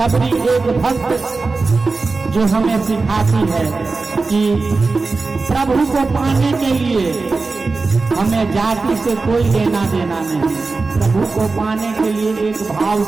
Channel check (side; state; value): left; quieter; 3.9 dB